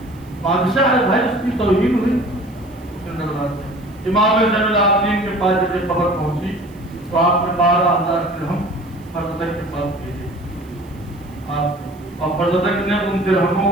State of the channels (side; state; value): right; noise; hiss, 29 dB below the sound